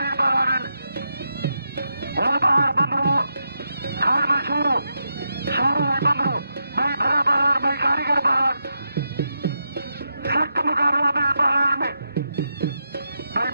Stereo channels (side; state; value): both; inverted; correlation -0.85